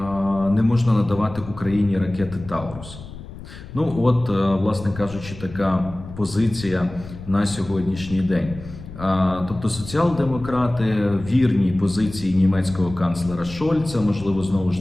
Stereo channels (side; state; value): left; noise; rumble, 14 dB below the sound